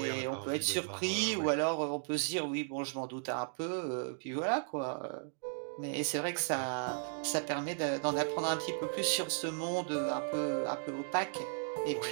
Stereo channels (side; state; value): left; silent; digital silence